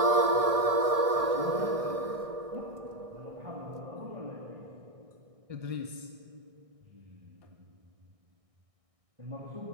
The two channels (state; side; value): late; left; 1.8 ms